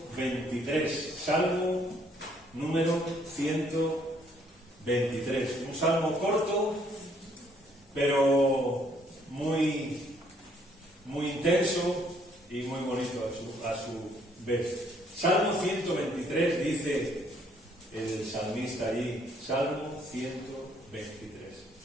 Salmo número 123. Un salmo corto, pero muy intenso y muy bonito a su vez. Salmo 123 dice el salmista allí, Salmo 123.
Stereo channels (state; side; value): normal; both; correlation 0.66